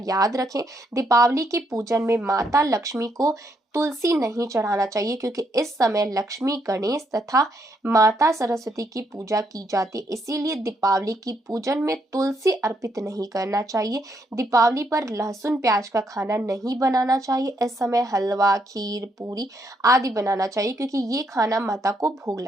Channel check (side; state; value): both; normal; correlation 0.75